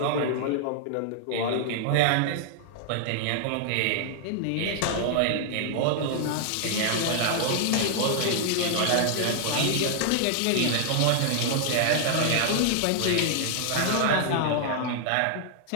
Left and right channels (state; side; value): different; both; correlation 0.00